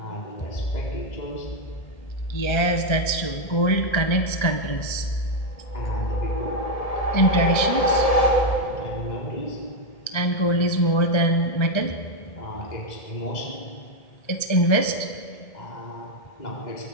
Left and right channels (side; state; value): right; late; 1.3 ms